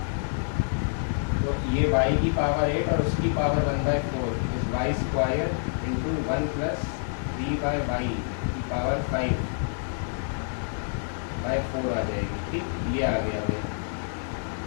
तो ये y की पावर 8 और उसकी पावर 1/4, इस y square into 1 plus 3 by y की पावर 5/4 आ जाएगी। ठीक, ये आ गया भाई।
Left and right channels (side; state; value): right; silent; digital silence